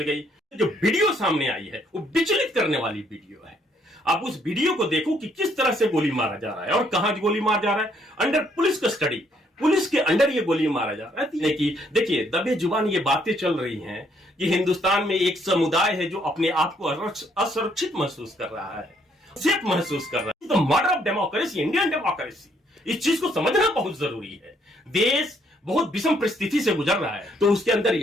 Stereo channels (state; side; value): normal; both; correlation 0.69